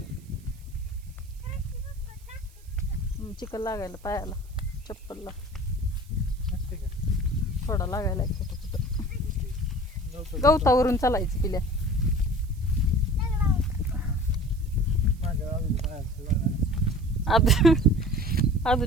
चिकन लागायला पायाला, चप्पलला थोडा लागायला कुठं गवतावरून चालायचं पिल्या.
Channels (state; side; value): noise; right; hiss, 28 dB below the sound